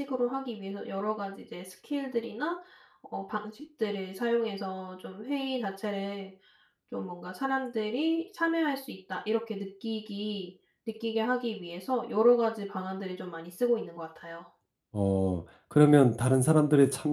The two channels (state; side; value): identical; both; correlation 1.00